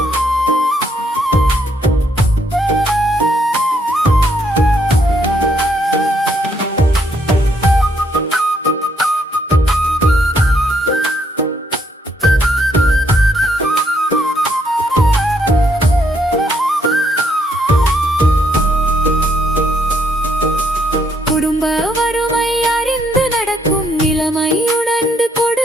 குடும்ப வறுமை அறிந்து நடக்கும் நிலைமை உணர்ந்து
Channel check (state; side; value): normal; both; correlation 0.72